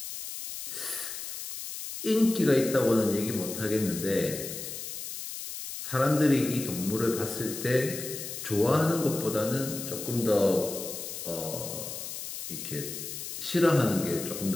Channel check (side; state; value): left; noise; hiss, 8 dB below the sound